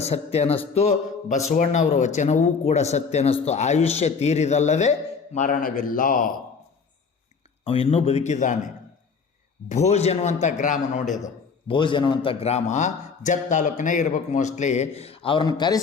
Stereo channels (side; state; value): right; quieter; 5.4 dB